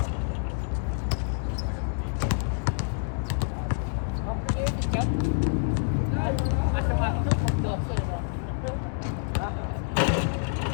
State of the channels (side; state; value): right; silent; digital silence